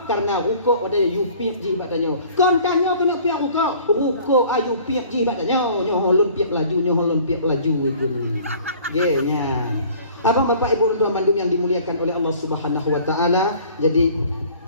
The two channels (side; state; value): both; inverted; correlation -0.51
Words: karena ruko ada yupiak jibat danyo. Kontanyo kena piak ruko ayu piak jibat danyo. Nyo holon piak laju itu. Genya. Abang bapak ibu dan bandung yang dimuliakan oleh Allah Subhanahu wa taala. Jadi